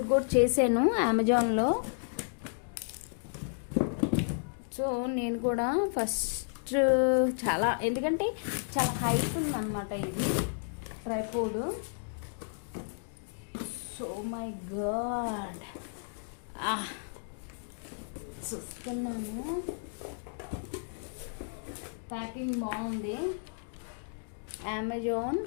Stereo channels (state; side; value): silent; right; digital silence